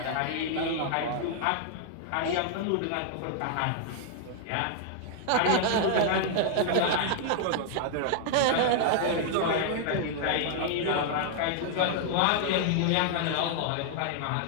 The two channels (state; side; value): different; both; correlation 0.00